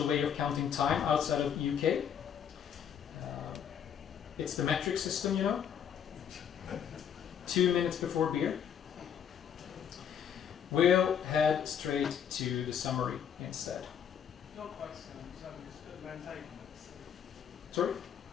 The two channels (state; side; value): quieter; right; 8.4 dB